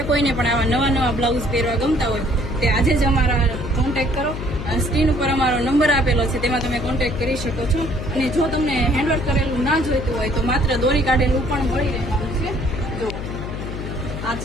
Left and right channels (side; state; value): left; noise; hum, 6 dB below the sound